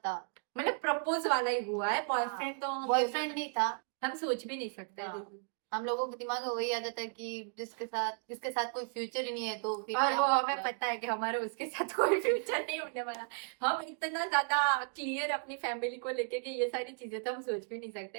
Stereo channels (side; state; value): left; silent; 55 dB below the other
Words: मतलब प्रपोज वाला ही हुआ है, बॉयफ्रेंड तो हम बॉयफ्रेंड नहीं था। हम सोच भी नहीं सकते। हाँ। हम लोगों के दिमाग में वही आदत है कि जिसके साथ कोई फ्यूचर ही नहीं है, तो फिर और क्या वो हमें मतलब? पता है कि हमारा उसके साथ कोई फ्यूचर नहीं होने वाला। हम इतना ज्यादा क्लियर अपनी फैमिली को लेके कि ये सारी चीजें तो हम सोच भी नहीं